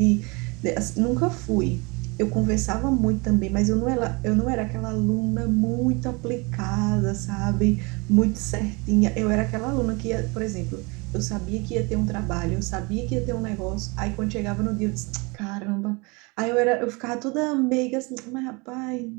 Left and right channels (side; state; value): left; quieter; 28.0 dB